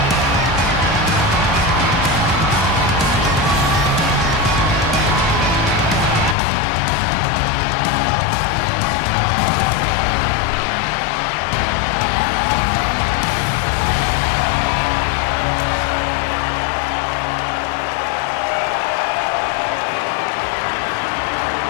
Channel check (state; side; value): drops out; right; at 6.4 s